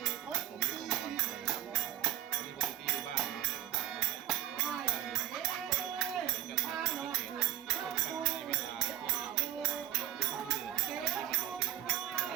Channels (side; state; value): left; quieter; 11.8 dB